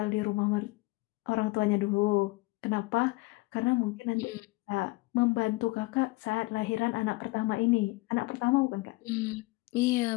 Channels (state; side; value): quieter; right; 23.0 dB